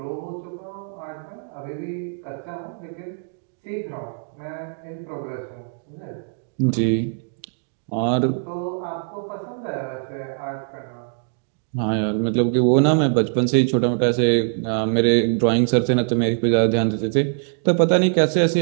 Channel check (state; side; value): silent; left; digital silence